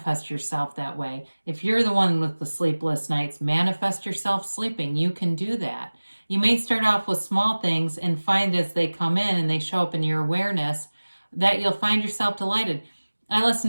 yourself that way. If you're the one with the sleepless nights, manifest yourself sleeping. You can do that. You may start off with small things and find as they come in and they show up in your awareness that you'll find yourself delighted. I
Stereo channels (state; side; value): inverted; both; correlation -1.00